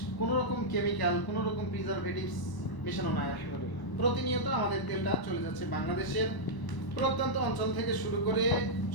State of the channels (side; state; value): right; late; 1.0 ms